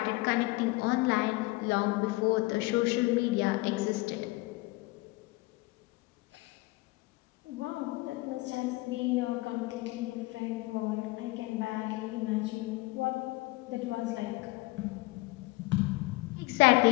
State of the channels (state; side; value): quieter; right; 21.8 dB